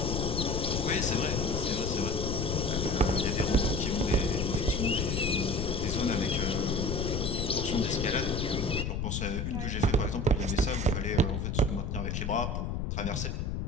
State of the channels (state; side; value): noise; left; rumble, 1 dB below the sound